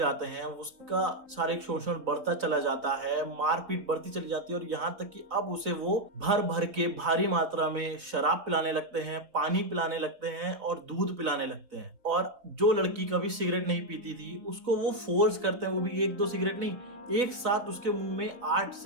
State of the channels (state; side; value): late; left; 3.8 ms